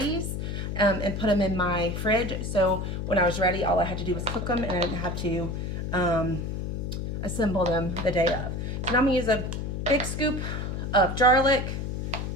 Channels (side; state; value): left; noise; hum, 3 dB below the sound